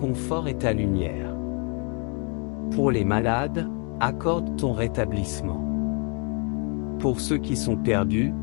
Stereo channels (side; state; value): right; quieter; 36.4 dB